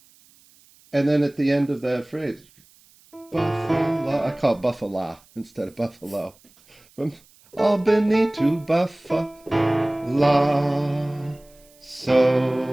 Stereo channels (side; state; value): right; noise; hiss, 29 dB below the sound